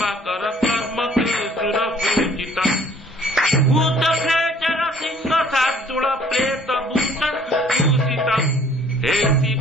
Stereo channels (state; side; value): normal; both; correlation 0.56